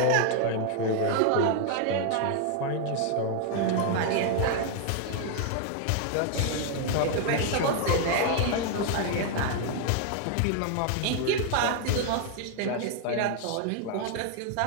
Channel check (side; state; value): both; different; correlation 0.00